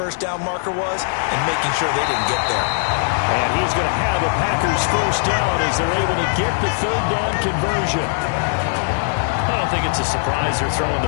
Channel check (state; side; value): silent; right; digital silence